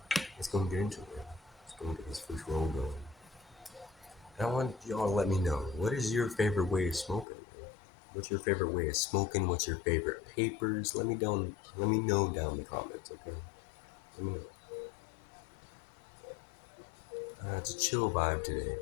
Let's go and get into it, man. Let's go and get this first roll going. And I want y'all to let me know, what is your favorite way of smoking, man? What's your favorite way of smoking? What's your favorite papers? Let me know down in the comments, okay? Let me know. It's a chill vibe today.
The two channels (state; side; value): drops out; right; at 7.2 s